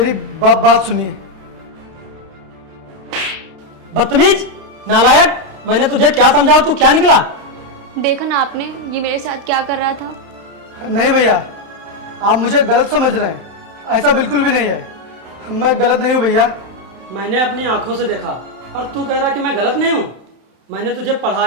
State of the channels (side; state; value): left; late; 32 ms